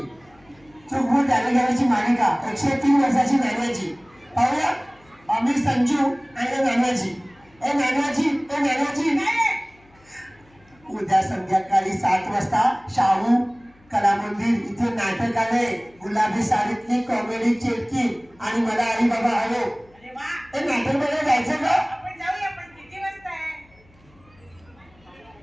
चूक भूल द्यावी घ्यावीची मालिका 103 वर्षाची नाण्याची. पाहूया आम्ही संजू आणि नानाजी. ए नानाजी ए नानाजी. उद्या संध्याकाळी 7 वाजता शाहू कला मंदिर इथे नाटक आलंय. गुलाबी साडीतली कॉमेडी चेटकी आणि मला आई बाबा हवो. ते नाटक बघायला जायचं का? आपण जाऊया. पण किती वाजता आहे?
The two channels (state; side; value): noise; left; hum, 30 dB below the sound